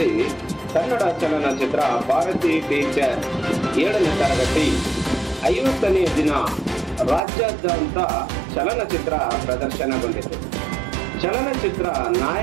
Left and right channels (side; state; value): left; drops out; at 7.2 s